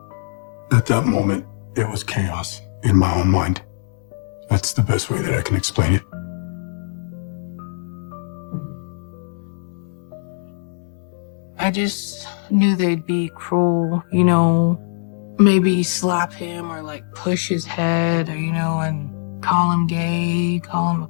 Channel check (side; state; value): right; silent; 65 dB below the other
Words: At that moment, it was chaos in my own mind. That's the best way that I can explain it. I just knew they'd be cruel, you know, maybe slap him or like push his head, or, you know, and call him gay, call him